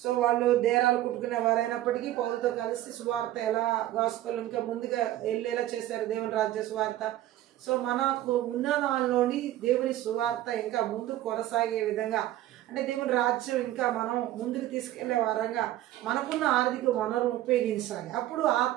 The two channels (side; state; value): left; quieter; 14.1 dB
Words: వాళ్ళు దేరాలు కుట్టుకునే వారైనప్పటికీ పౌలతో కలిసి సువార్త ఎలా గాస్పెల్ ఇంకా ముందుగా వెళ్ళేలా చేశారు, దేవుని రాజ్య సువార్త. సో మనకు ఉన్న దానిలోని దేవుని సువార్త ఇంకా ముందు కొనసాగే విధంగా, అంటే దేవుని రాజ్యం ఇంకా మనం ముందుకు తీసుకెళ్లే వారంగా మనకున్న ఆర్థిక వనరులు ఉపయోగించాలి. అప్పుడు